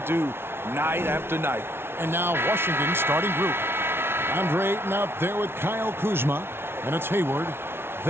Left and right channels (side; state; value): left; late; 0.12 ms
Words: do night after night. And now Washington's starting group. Andre Ayton out there with Kyle Kuzma, and it's Hayward.